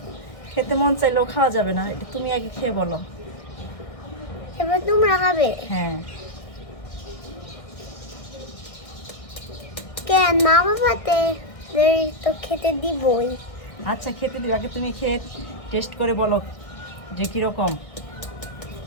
খেতে মন চাইলেও খাওয়া যাবে না, এটা তুমি আগে খেয়ে বলো। এবার তোমরা খাবে। হ্যাঁ, কেন মা বাবাতে তো খেতে দিবই। আচ্ছা খেতে দিও, আগে তুমি খেয়ে টেস্ট করে বলো যে কিরকম।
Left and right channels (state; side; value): late; right; 1.6 ms